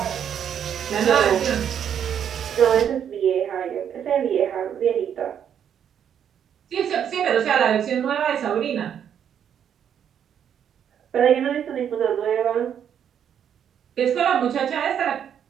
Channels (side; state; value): left; quieter; 8.8 dB